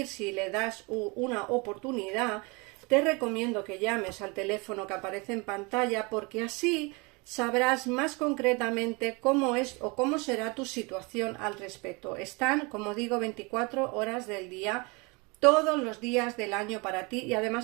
si le das una oportunidad, te recomiendo que llames al teléfono que aparece en pantalla, porque así sabrás más concretamente cómo es o cómo será tu situación al respecto. Están, como digo, 24 horas del día, todos los días del año para ti, y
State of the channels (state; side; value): quieter; left; 28.4 dB